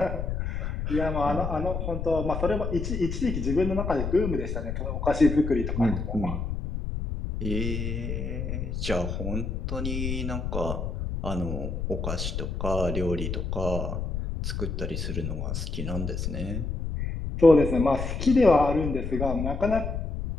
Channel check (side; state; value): left; noise; rumble, 3 dB below the sound